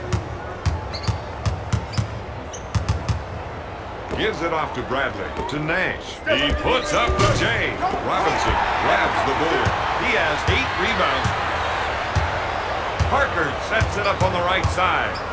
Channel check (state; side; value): identical; both; correlation 1.00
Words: Gives it off to Bradley. To Nash. He puts up the J. Robinson grabs the board. He has 8 rebounds. Parker sets it up on the right side